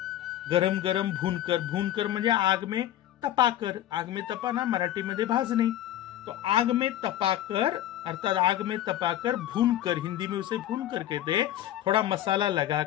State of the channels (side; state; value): right; quieter; 12.6 dB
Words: गरम गरम भूनकर, भूनकर म्हणजे आग में तपाकर, आग में तपाना मराठी मध्ये भाजणे, तो आग में तपाकर अर्थात आग में तपाकर, भूनकर, हिंदी में उसे भूनकर कहते, थोड़ा मसाला